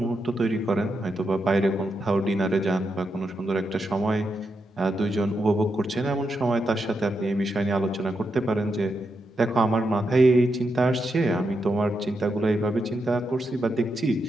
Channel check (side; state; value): both; normal; correlation 0.84